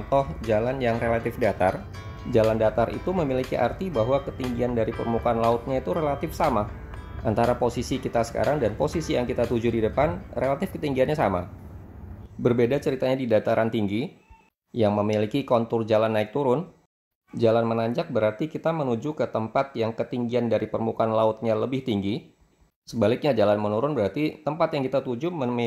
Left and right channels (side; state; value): both; identical; correlation 1.00